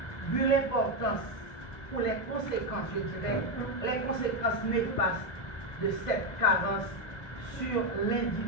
vu l'importance ou les conséquences, je dirais, les conséquences néfastes de cette carence sur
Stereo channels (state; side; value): late; right; 2.0 ms